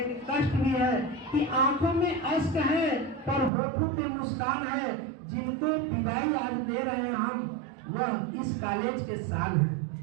कष्ट भी है कि आंखों में अश्क है पर होठों पे मुस्कान है। जिनको विदाई आज दे रहे हैं हम, वह इस कॉलेज के साल हैं।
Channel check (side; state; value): left; drops out; at 3.5 s